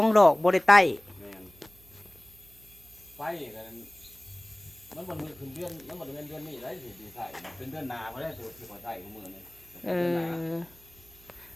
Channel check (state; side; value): noise; right; hum, 25 dB below the sound